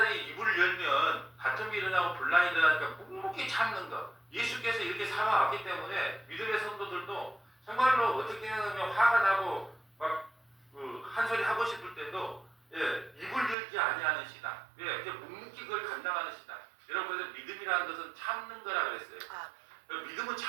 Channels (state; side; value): drops out; left; at 13.6 s